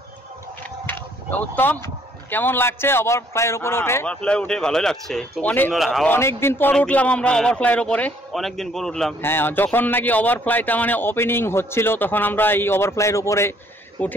উত্তম কেমন লাগছে ওভারফ্লাইয়ের উপরে উঠে? ওভারফ্লাই উঠে ভালোই লাগছে, খুব সুন্দর হাওয়া। অনেকদিন পর উঠলাম আমরা ওভারফ্লাইয়ের উপরে, অনেকদিন পর উঠলাম। হ্যাঁ যখন নাকি ওভারফ্লাইটা মানে ওপেনিং হচ্ছিল, তখন আমরা এই ওভারফ্লাইয়ের উপরে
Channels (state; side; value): normal; both; correlation 0.64